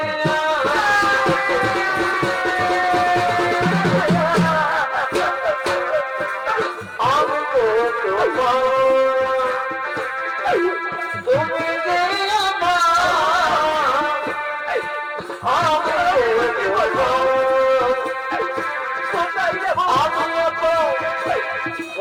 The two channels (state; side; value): identical; both; correlation 1.00